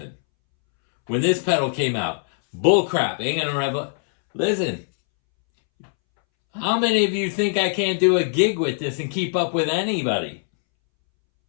When this pedal came out, bullcrap. Ain't going to Listen. How many of you think I can't do a gig with this and keep up with anybody?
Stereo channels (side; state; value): right; silent; 64 dB below the other